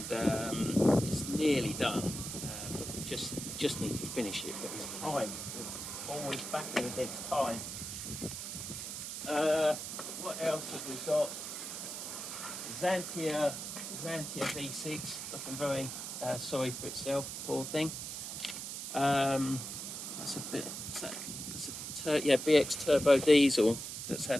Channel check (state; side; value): noise; right; hiss, 6 dB below the sound